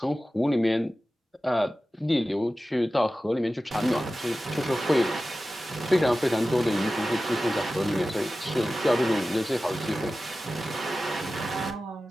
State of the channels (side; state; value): both; normal; correlation 0.95